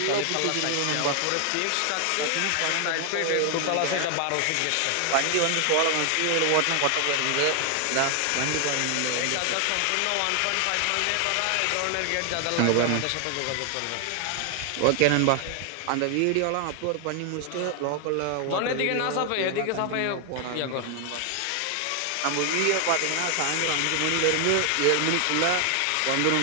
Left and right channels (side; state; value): both; different; correlation 0.00